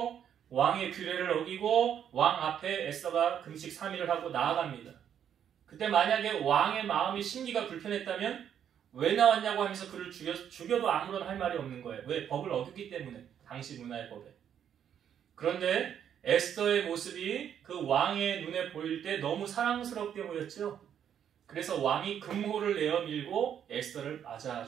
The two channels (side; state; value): left; quieter; 9.1 dB